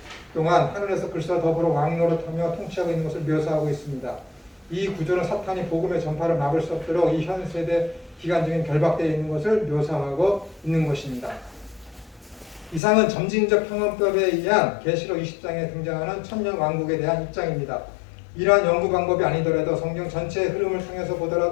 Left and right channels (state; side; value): drops out; right; at 12.8 s